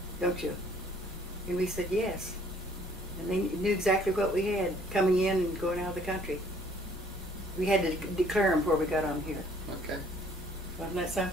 don't you?" And we said yes. And they knew exactly what we had coming in and going out of the country. We had to declare them before we got on here. Okay. Wasn't that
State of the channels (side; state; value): both; normal; correlation 0.59